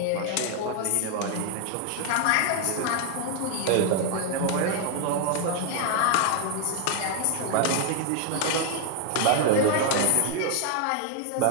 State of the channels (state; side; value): different; both; correlation 0.00